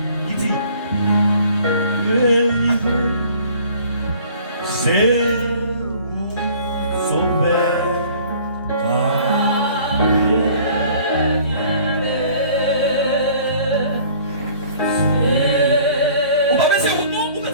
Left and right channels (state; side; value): inverted; both; correlation -0.52